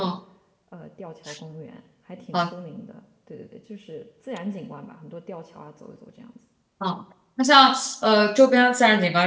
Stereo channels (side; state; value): both; identical; correlation 1.00